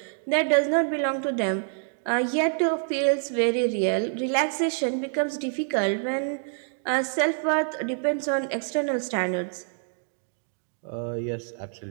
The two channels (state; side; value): silent; left; digital silence